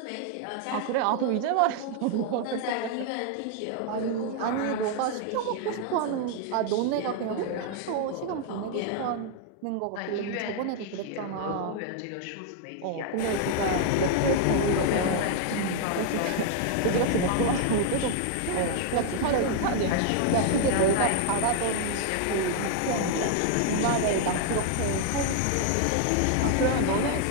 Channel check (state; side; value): different; both; correlation 0.00